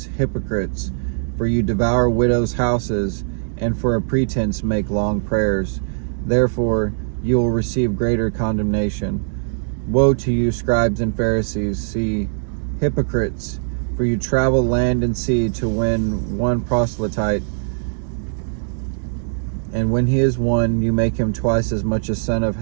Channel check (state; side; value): silent; left; digital silence